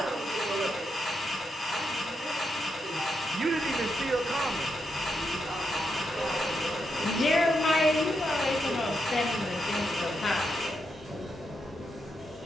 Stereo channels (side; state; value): both; normal; correlation 0.82